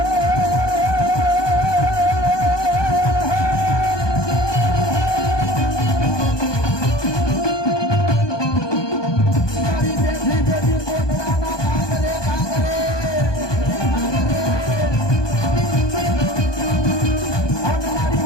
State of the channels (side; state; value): right; late; 1.2 ms